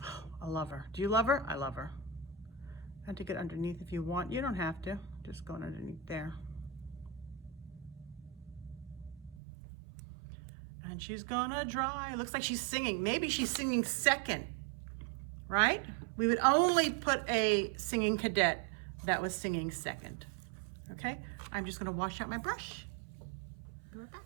Oh, I love her. Do you love her? I love her. And to get underneath if you want. You don't have to. Just going underneath there. And she's gonna dry. Looks like she's singing. Maybe she's singing second, right? We would only put a singing cadet that was singing second. Okay, I'm just gonna wash out my brush. Be right back.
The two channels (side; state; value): left; drops out; at 9.3 s